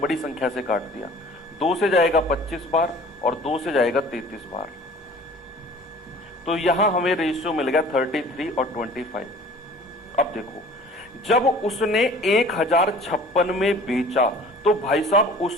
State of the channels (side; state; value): both; normal; correlation 0.47